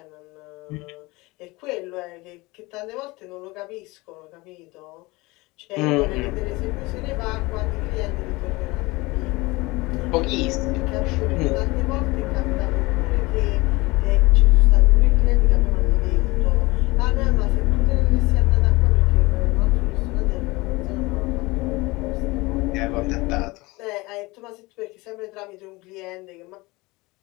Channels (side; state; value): right; quieter; 22.8 dB